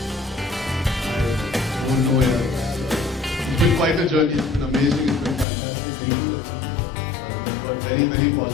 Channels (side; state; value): right; drops out; at 5.5 s